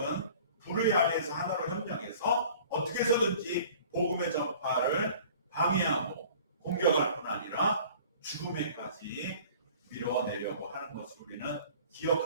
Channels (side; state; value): both; inverted; correlation -0.48